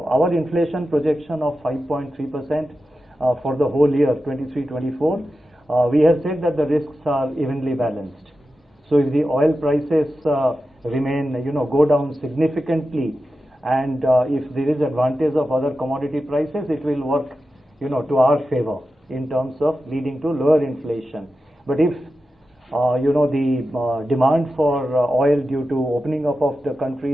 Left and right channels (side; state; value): both; normal; correlation 0.92